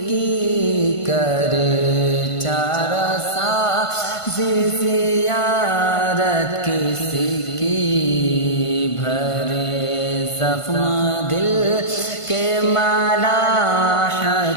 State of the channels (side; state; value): right; late; 1.5 ms